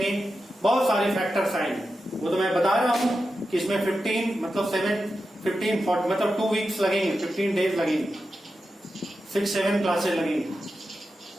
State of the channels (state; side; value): normal; both; correlation 0.90